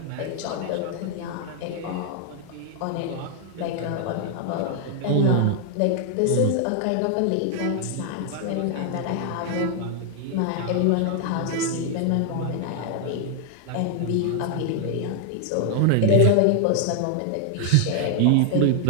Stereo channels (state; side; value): different; both; correlation 0.00